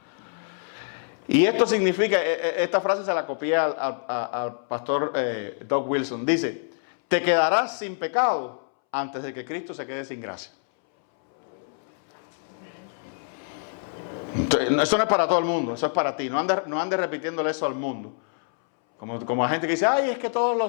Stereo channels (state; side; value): silent; right; 61 dB below the other